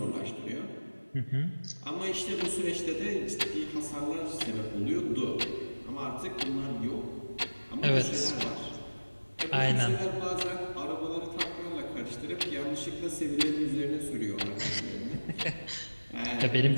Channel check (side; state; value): both; inverted; correlation -1.00